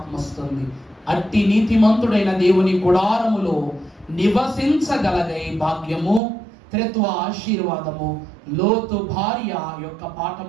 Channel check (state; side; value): drops out; left; at 6.2 s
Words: వస్తుంది. అట్టి నీతిమంతుడైన దేవుని గుడారములో నివసించగలగై భాగ్యము త్రిత్వ ఆశీర్వాదము లోతు భార్య యొక్క